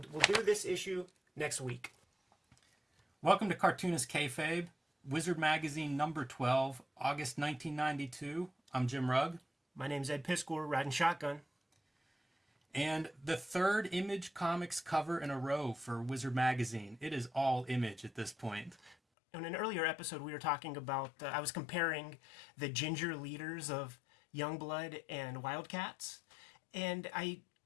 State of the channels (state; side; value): drops out; right; at 18.9 s